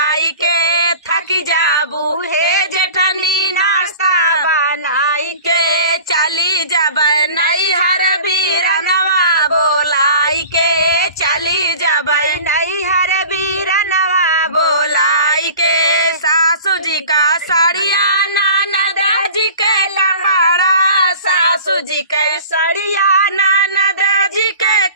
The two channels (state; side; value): inverted; both; correlation -0.42